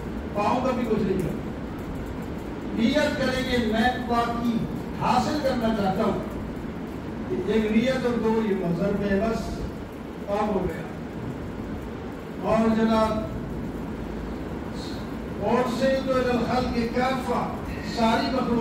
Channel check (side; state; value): both; identical; correlation 1.00